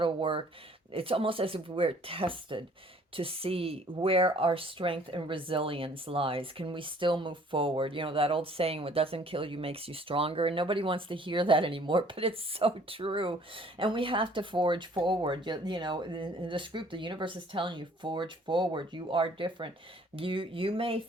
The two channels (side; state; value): both; normal; correlation 0.57